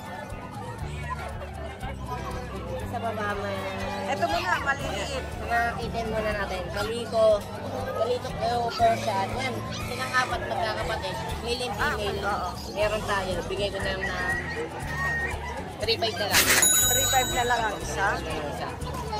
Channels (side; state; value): both; identical; correlation 1.00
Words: Sa baba may Ito muna, maliliit. item muna natin. Kaliko kayo Persian. Yan, silang 4 magkakapatid. Male and female. Oo. Meron tayo. Bigay ko na ng 3.5 na lang. 3.5 na lang ang isa. Yung isa.